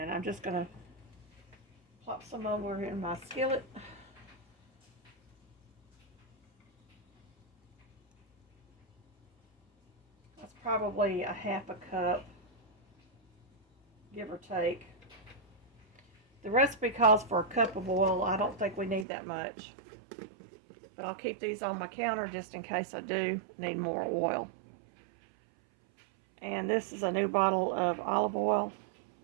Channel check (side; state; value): left; drops out; at 19.1 s